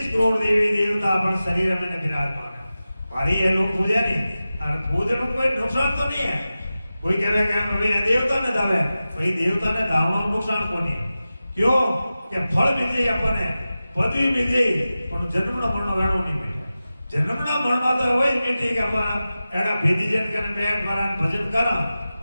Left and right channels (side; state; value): both; inverted; correlation -0.95